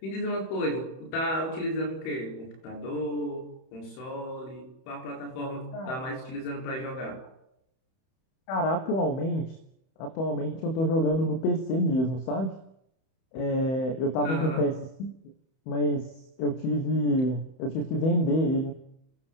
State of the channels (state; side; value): late; right; 31 ms